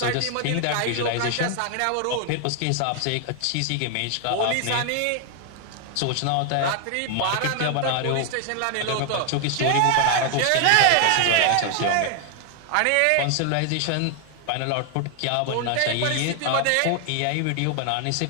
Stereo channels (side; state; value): both; different; correlation 0.00